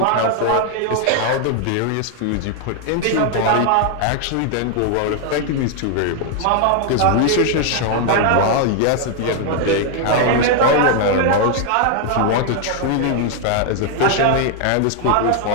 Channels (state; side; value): different; both; correlation 0.00